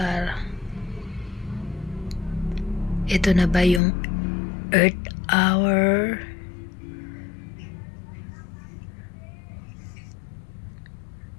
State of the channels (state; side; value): drops out; right; at 3.8 s